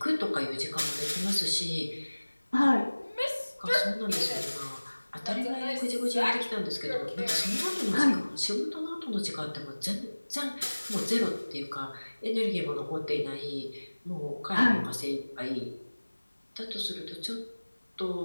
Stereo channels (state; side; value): inverted; both; correlation -1.00